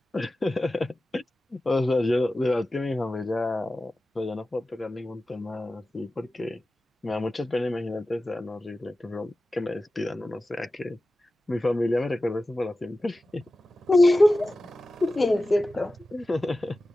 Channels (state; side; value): normal; both; correlation 0.95